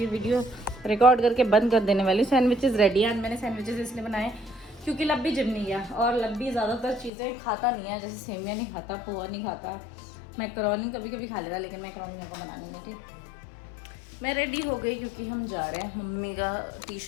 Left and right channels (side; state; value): right; drops out; at 7.1 s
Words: वीडियो रिकॉर्ड करके बंद कर देने वाली हूँ। सैंडविचेस रेडी है। मैंने सैंडविचेस इसलिए बनाए क्योंकि लब्बी जिम नहीं गया, और लब्बी ज़्यादातर चीज़ें खाता नहीं है, जैसे सेमिया नहीं खाता, पोहा नहीं खाता, मैकरोनी कभी कभी खा लेता, लेकिन मैकरोनी मेरे को बनानी नहीं थी। मैं रेडी हो गई क्योंकि हम जा रहे हैं मम्मी का टी